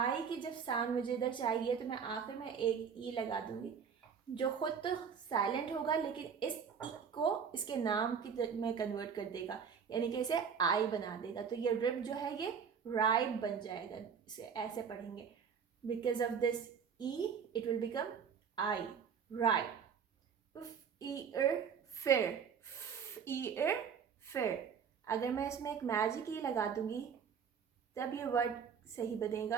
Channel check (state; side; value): quieter; left; 6.9 dB